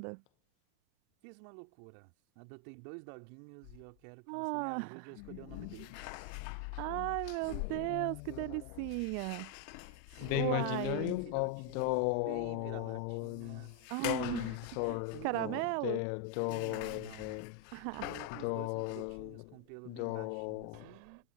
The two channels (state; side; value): different; both; correlation 0.01